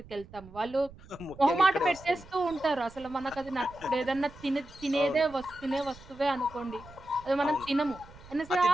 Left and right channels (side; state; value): right; noise; rumble, 20 dB below the sound